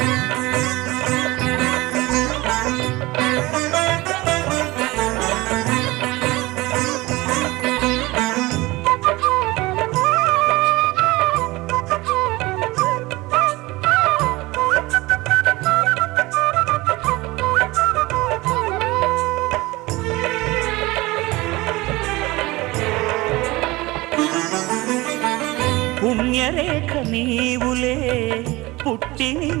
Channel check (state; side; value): quieter; left; 21.1 dB